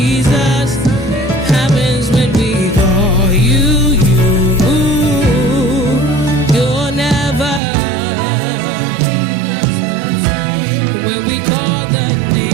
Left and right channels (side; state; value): left; drops out; at 7.6 s